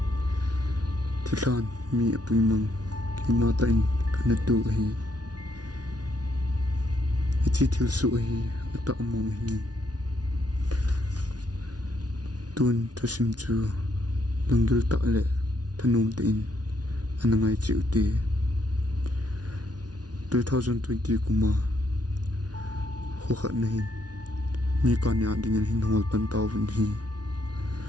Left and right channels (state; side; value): late; left; 0.69 ms